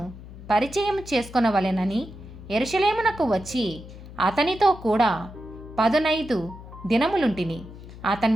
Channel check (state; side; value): noise; left; hum, 15 dB below the sound